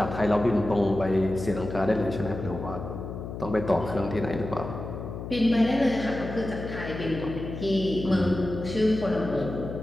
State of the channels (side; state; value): left; noise; hum, 8 dB below the sound